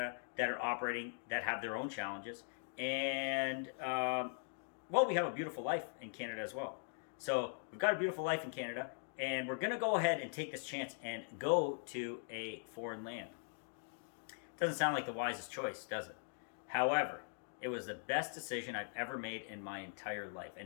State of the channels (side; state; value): right; silent; digital silence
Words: that are operating, that have their own challenges. And, we have a beautiful life in Canada as well. So we've got a beautiful life in Canada, and we're going to go ahead and take this chance and go to a foreign land. Doesn't sound like the wisest choice, does it? However, it was the best decision I've ever made in my entire life.